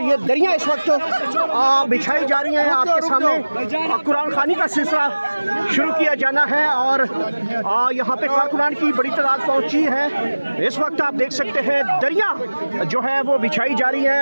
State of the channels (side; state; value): both; inverted; correlation -1.00